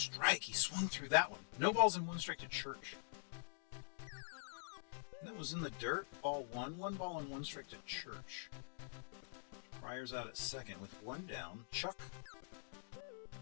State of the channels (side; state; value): right; silent; digital silence